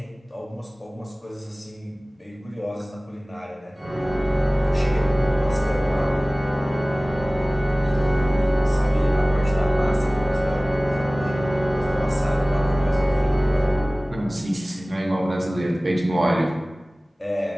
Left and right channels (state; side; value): normal; both; correlation 0.98